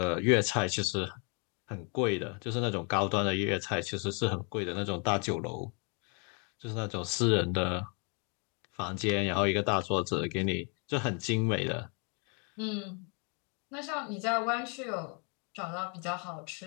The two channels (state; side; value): quieter; right; 36.0 dB